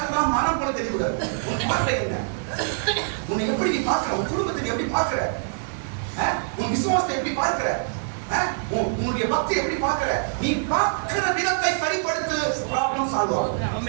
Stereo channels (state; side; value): silent; left; digital silence